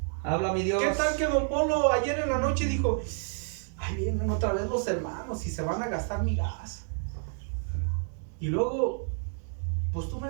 Habla mi Dios. ¿Qué tal que don Polo ayer en la noche dijo, ay, vienen otra vez los hermanos y se van a gastar mi gas? Y luego, pues tú me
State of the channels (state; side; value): silent; left; 58 dB below the other